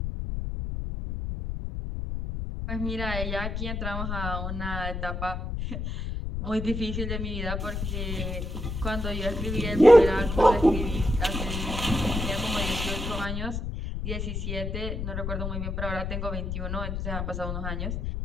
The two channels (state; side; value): noise; left; rumble, 3 dB below the sound